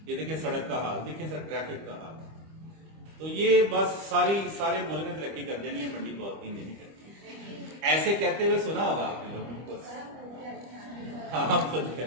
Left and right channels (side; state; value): left; late; 25 ms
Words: ये देखिए सड़क का हाल, देखिए सर ट्रैफिक का हाल, तो ये बस सारे मुल्क में तरक्की कर देनी है, मंडी बादिन नहीं करती। ऐसे कहते हुए सुना होगा आपने लोगों को, हाँ हम खुद